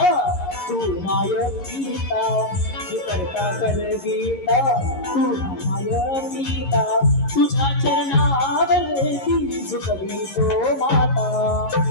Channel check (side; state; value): right; late; 11 ms